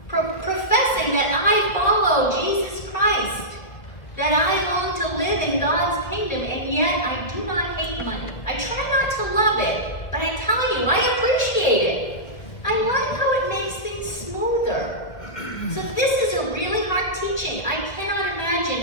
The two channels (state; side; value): late; right; 2.0 ms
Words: professing that I follow Jesus Christ, that I long to live in God's kingdom, and yet I do not hate money. I try not to love it, but I tell you, I appreciate it. I like how it makes things smoother. So this is a really hard teaching. I cannot imagine